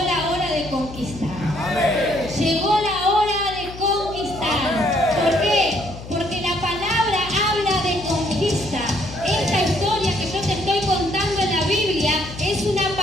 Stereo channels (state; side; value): noise; left; hum, 13 dB below the sound